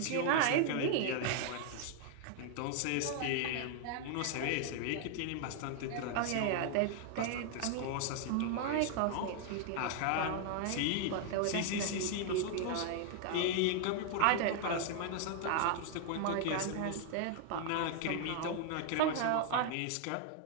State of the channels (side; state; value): both; different; correlation 0.00